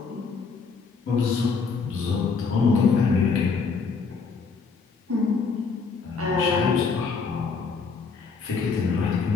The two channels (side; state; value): right; quieter; 5.0 dB